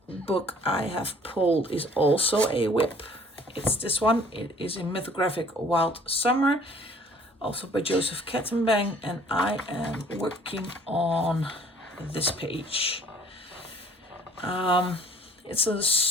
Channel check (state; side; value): normal; both; correlation 0.54